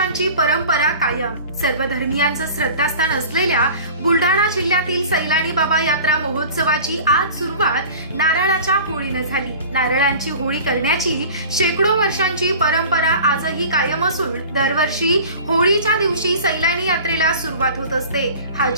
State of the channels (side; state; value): both; inverted; correlation -0.40